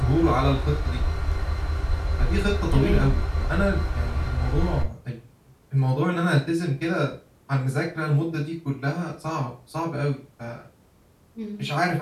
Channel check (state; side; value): identical; both; correlation 1.00